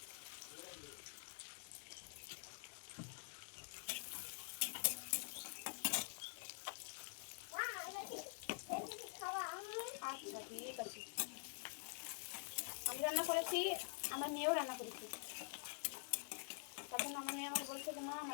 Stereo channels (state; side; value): silent; right; digital silence